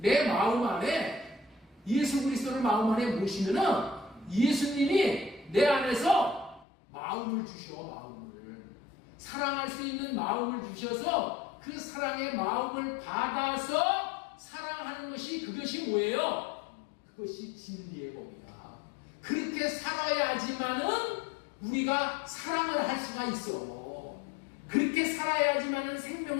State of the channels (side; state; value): right; drops out; at 6.7 s